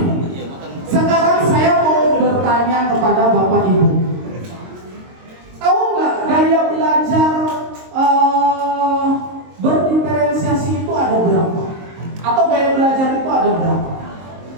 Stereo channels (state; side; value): late; left; 22 ms